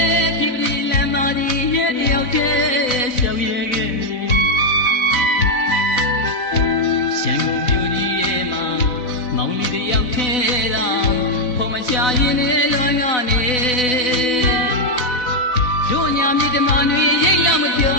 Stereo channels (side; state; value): right; late; 4.0 ms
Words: ့ဒီဒီလမ်းမကြီးရဲ့တယောက်တည်းရှောက်ရဲခဲ့ရန်ကုန်မြို့ကြီးရဲ့မှာမောင်လေးတယောက်ထဲတာဖော်မချရင်လည်းလွမ်းကနေတို့ညာမြေဓမ္မတွေရိတ်လာမပြော